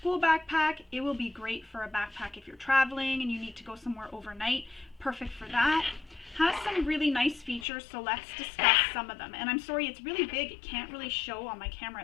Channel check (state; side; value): drops out; right; at 7.7 s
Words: backpack. It will be great for a backpack if you're traveling and you need to go somewhere overnight. Perfect for that. Has some really nice features, so let's discuss some of them. And I'm sorry, it's really big. It can't really show on my camera.